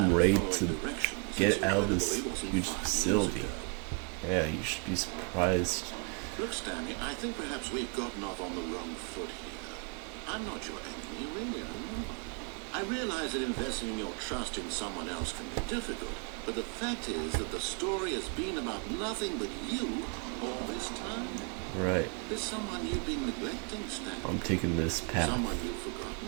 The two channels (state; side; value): quieter; left; 35.5 dB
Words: at ready following to directions, get it's out of this incredible it wasn't huge 5 years facility. ago. Yeah, you should be surprised. Look, Stanley, I think perhaps we've gotten off on the wrong foot here. I'm not your enemy, really, I'm not. I realize that investing in your trust in someone else can be difficult, but the fact is that the story has been about nothing but you all this time. Right. There's someone you've been neglecting, Stanley. I'm taking this path. Someone you've